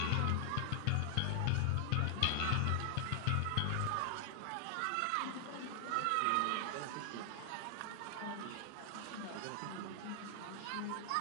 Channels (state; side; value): different; both; correlation 0.00